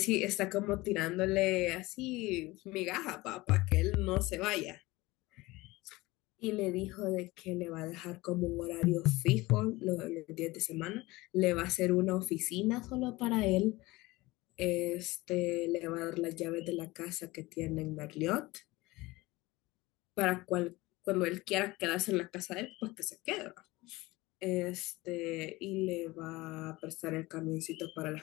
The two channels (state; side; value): quieter; right; 20.6 dB